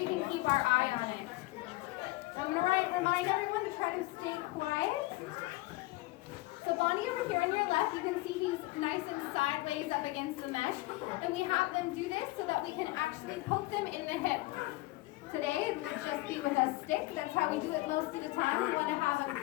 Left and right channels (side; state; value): right; quieter; 20.4 dB